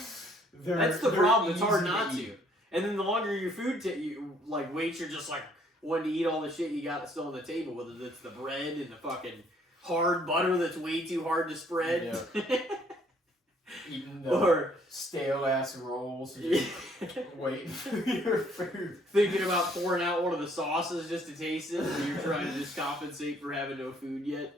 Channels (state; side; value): normal; both; correlation 0.63